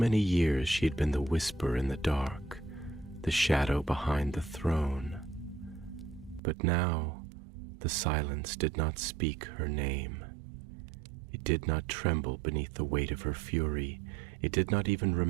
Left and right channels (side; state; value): left; drops out; at 6.4 s